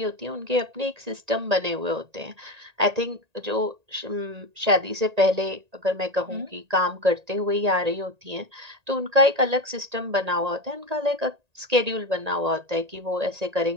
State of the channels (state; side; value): late; left; 1.8 ms